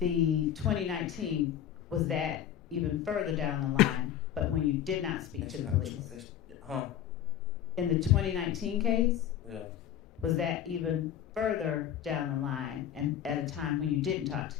2019, was that even further down the line, but when you did not speak to the police? Huh? In the 2019 case, Yeah. Was that even further down the line and at a time when you didn't talk to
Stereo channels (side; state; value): right; quieter; 10.3 dB